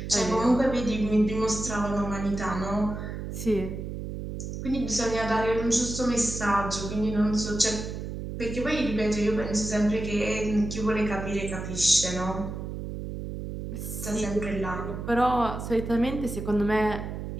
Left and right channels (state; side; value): noise; right; hum, 6 dB below the sound